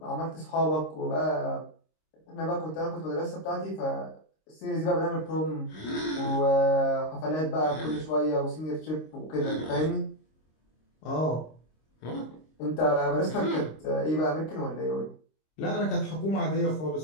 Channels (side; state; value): right; late; 26 ms